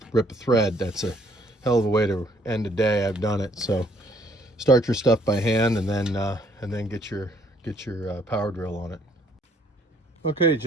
rip a thread. That's a hell of a way to end a day. I've done it. So start your stuff by hand and then get your power drill on it. Okay,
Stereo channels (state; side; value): normal; both; correlation 0.64